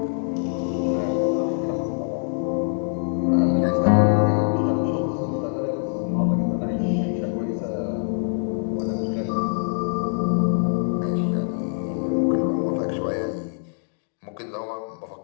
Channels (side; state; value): right; silent; 62 dB below the other